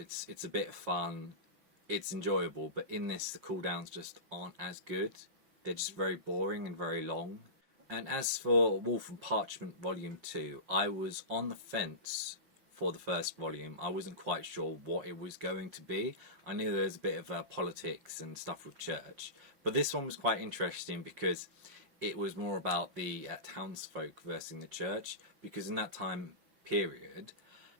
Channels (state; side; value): late; left; 5.6 ms